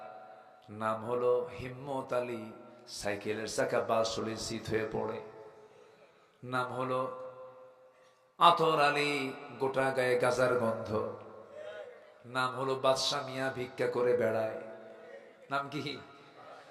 নাম হলো হিম্মত আলী, সাইকেলের চাকা বাসুলির শীত হয়ে পড়ে। নাম হলো আতর আলী, গোটা গায়ে গাজার গন্ধ। নাম হলো বাদশা মিয়া, ভিক্ষা করে বেড়ায়। নাম কি?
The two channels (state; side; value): identical; both; correlation 1.00